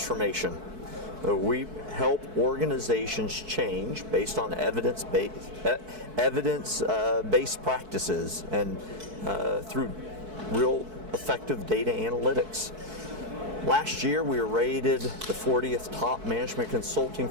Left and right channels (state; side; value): late; left; 4.6 ms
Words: We help organizations change based on evidence-based practices and through real effective data analytics. Last year we were rated the 40th top management consulting